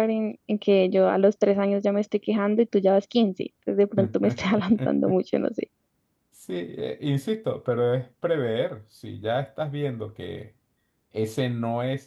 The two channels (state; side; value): identical; both; correlation 1.00